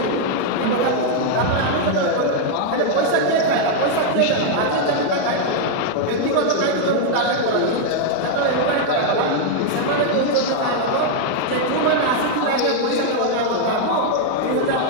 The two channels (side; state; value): both; different; correlation 0.00